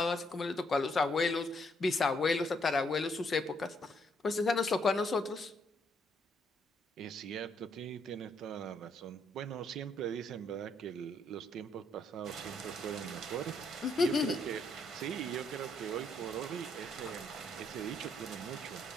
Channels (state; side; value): normal; both; correlation 0.72